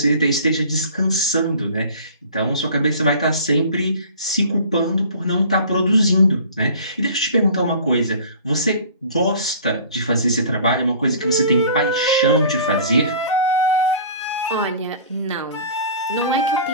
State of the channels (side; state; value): both; inverted; correlation -0.45